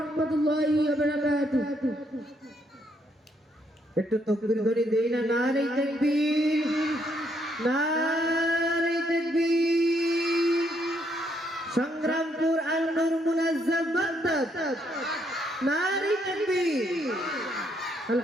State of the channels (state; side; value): normal; both; correlation 0.73